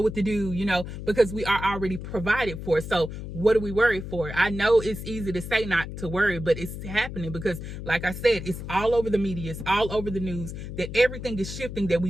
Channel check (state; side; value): noise; left; hum, 8 dB below the sound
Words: what to do, you know, because we are already provided for. So what do we worry for? I know it's easy to say not to worry, but it's happening because, like I said, it's all over the media. It's all over the news that everything is shifting, that